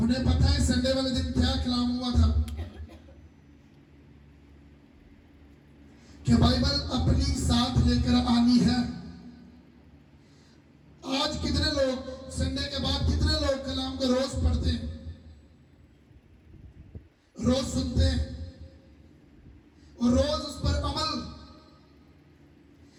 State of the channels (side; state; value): both; identical; correlation 1.00